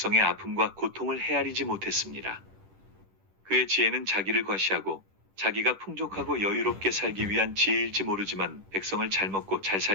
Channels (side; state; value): left; late; 10 ms